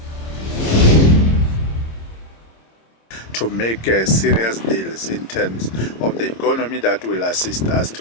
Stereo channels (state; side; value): late; right; 26 ms